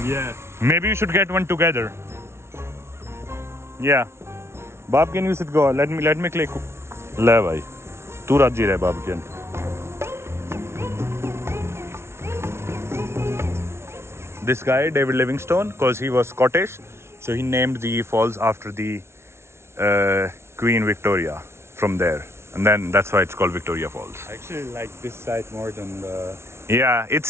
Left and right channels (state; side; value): late; left; 0.13 ms